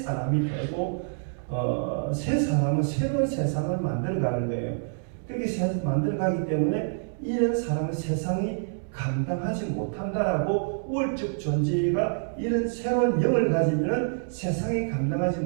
되고 새 사람은 새로운 세상을 만들어가는 거예요. 그렇게 만들어가기 때문에 이런 사람은 세상이 감당하지 못한다라고 우월적 존재가 이런 새로운 영을 가지면 세상에 감당하지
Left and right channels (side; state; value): left; silent; 60 dB below the other